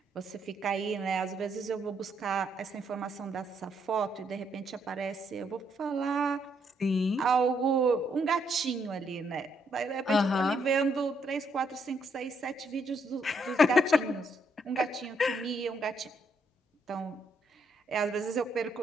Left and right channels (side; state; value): both; normal; correlation 0.74